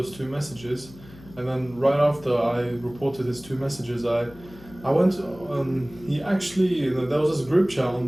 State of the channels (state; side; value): noise; left; hum, 20 dB below the sound